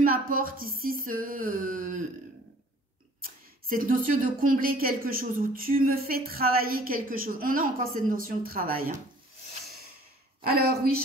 ici cette notion de combler quelque chose ou tu me fais travailler quelque chose. On a encore cette notion de travail. Hein. Alors oui,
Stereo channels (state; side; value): normal; both; correlation 0.53